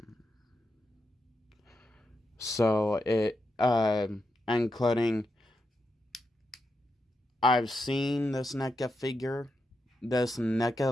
so it, including, I've seen this NECA figure. This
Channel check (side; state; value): both; normal; correlation 0.85